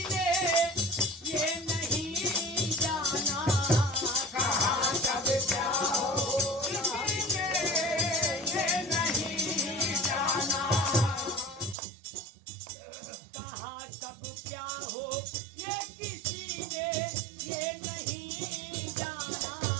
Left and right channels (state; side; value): drops out; left; at 11.8 s